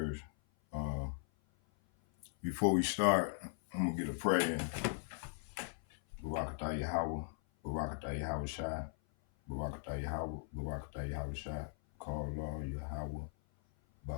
Before we start, I'm gonna get a prayer in. Barakatah Yahweh, Barakatah Yahweh Shai, Barakatah Yahweh, Barakatah Yahweh Shai, call Allah Yahweh,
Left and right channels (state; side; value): silent; right; 52 dB below the other